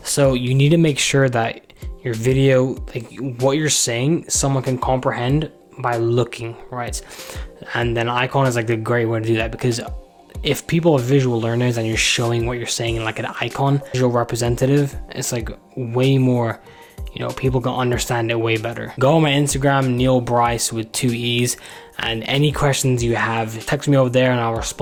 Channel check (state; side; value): identical; both; correlation 1.00